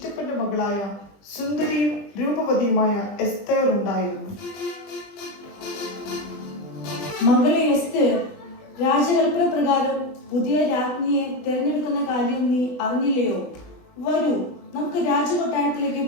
മകളായ സുന്ദരിയും രൂപവതിയുമായ എസ്തേർ ഉണ്ടായിരുന്നു. മകളെ എസ്തേർ, രാജകൽപ്പന പ്രകാരം പുതിയ രാജ്ഞിയെ തിരഞ്ഞെടുക്കുന്ന കാര്യം നീ അറിഞ്ഞില്ലയോ? വരൂ, നമുക്ക് രാജകൊട്ടാരത്തിലേക്ക്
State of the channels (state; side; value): late; right; 20 ms